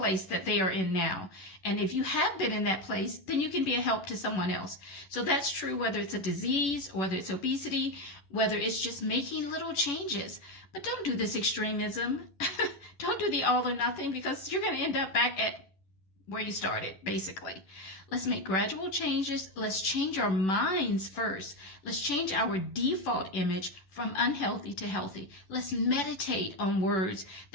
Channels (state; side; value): late; right; 11 ms